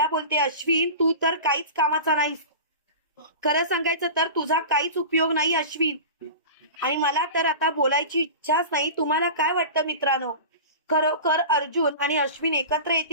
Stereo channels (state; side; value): inverted; both; correlation -0.33